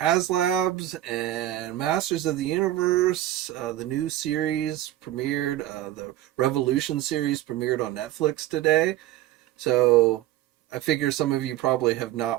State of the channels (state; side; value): quieter; left; 14.0 dB